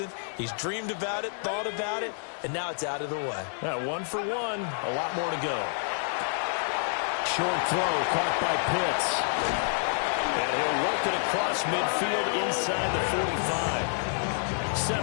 He's dreamed about it, thought about it, and now it's out of the way. Yeah, 1 for 1. A lot more to go. Short throw caught by Pitts. And he'll work it across midfield inside the 45.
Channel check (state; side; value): silent; right; digital silence